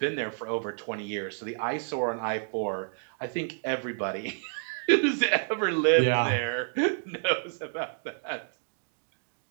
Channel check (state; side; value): silent; left; digital silence